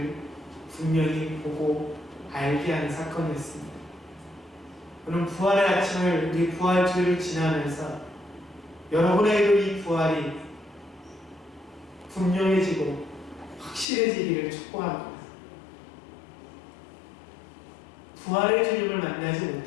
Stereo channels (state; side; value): drops out; right; at 13.9 s